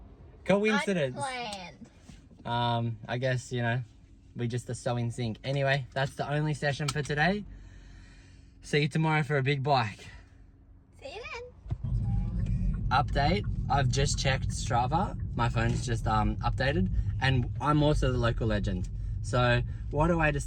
Coincidence. Unplanned. I guess, we just are so in sync. Anyway, that's the only session for today. See you tomorrow for a big bike. See you then. Update, I've just checked Strava. My phone's just updated, and I'm also the local legend. So what a way to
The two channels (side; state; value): both; identical; correlation 1.00